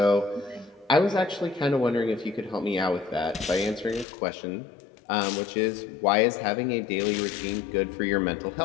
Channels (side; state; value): right; drops out; at 4.0 s